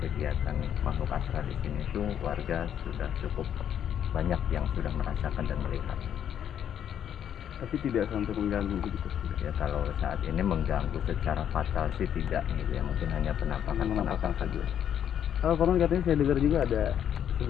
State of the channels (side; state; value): right; quieter; 9.4 dB